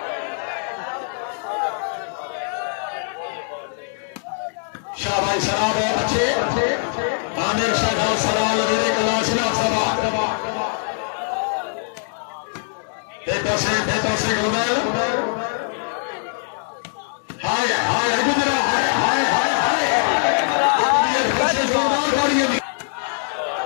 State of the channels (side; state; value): right; silent; digital silence